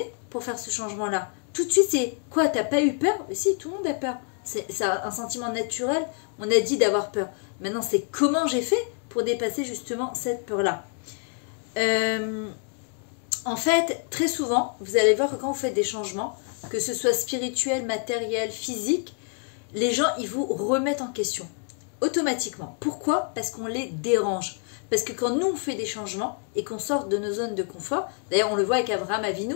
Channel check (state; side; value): quieter; right; 38.2 dB